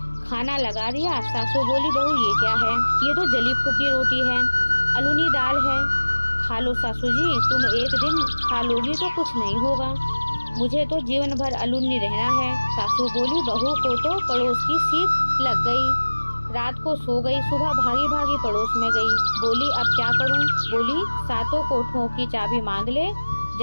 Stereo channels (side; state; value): both; inverted; correlation -1.00